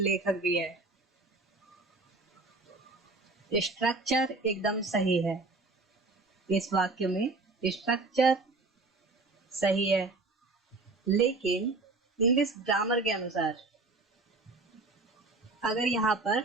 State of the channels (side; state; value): left; quieter; 3.4 dB